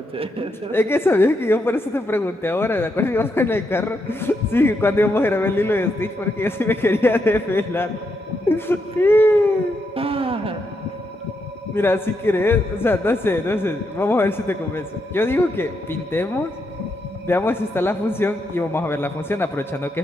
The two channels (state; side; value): normal; both; correlation 0.81